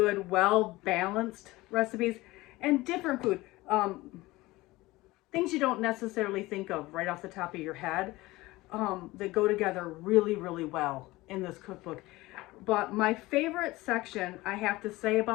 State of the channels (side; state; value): right; quieter; 19.7 dB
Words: well-balanced recipes and different food. Things you don't necessarily think of right off the top of your head that go together really, really well in this cookbook. But my favorite section, I have to say